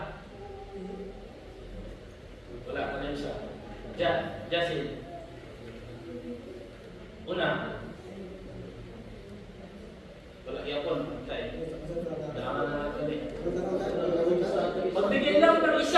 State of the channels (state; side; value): identical; both; correlation 1.00